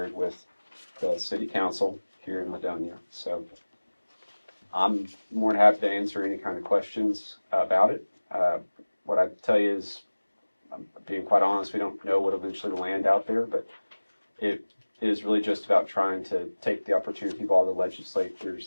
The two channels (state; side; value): inverted; both; correlation -1.00